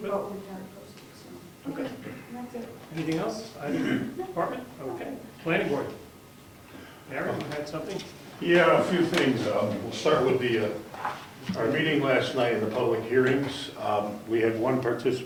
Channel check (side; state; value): both; identical; correlation 1.00